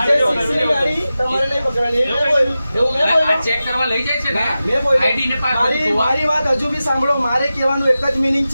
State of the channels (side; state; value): both; inverted; correlation -0.94